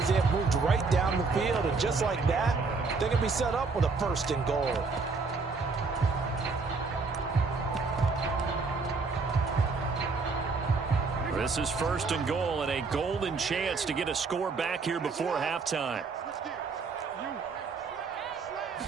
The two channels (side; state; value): left; quieter; 4.3 dB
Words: They have moved right down the field. And just like that, they can be set up with a 1st and goal. This is 1st and goal and a golden chance to get a score back here before halftime.